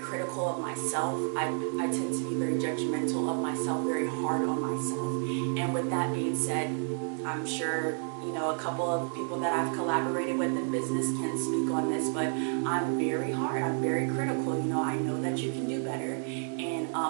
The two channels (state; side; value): silent; left; 57 dB below the other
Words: of myself. I tend to be very judgmental of myself, very hard on myself. And with that being said, I'm sure a couple of people that I've collaborated with in business can speak on this, but I'm very hard, I'm very critical. I know that you can do better, and